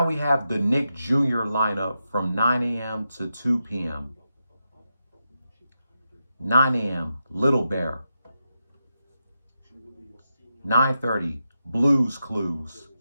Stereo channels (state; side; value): inverted; both; correlation -0.88